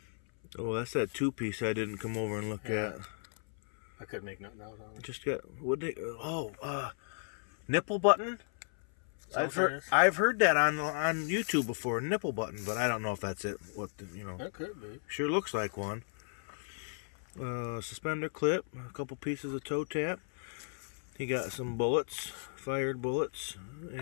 Oh, that's that 2-piece I didn't come over and look at. I couldn't make nothing out on it. Just got nipple button. I've heard that on YouTube before, nipple button, but I don't know if that's it. That could be. Sure looks like one. Suspender clip, a couple pieces of toe tap. He got some bullets, fired bullets,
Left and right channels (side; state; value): right; silent; 55 dB below the other